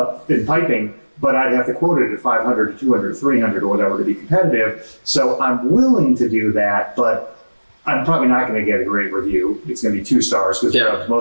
in piping. But I'd have to quote it at $500 to $200, $300 or whatever to be competitive. So I'm willing to do that, but I'm probably not going to get a great review. It's going to be 2 stars because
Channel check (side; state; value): both; inverted; correlation -1.00